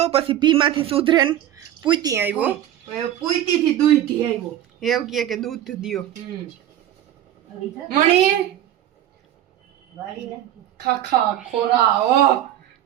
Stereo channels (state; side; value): quieter; left; 12.1 dB